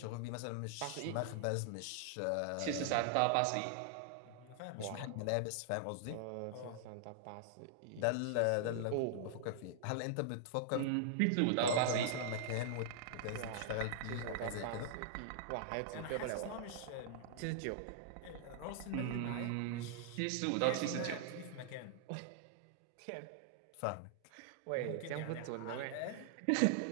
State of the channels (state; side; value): different; both; correlation -0.01